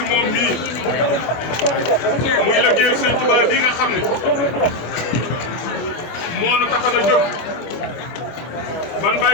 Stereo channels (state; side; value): late; right; 25 ms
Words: moom mii muy liggéey Serigne Touba bi nga xam ne moo nu tax a jóg ban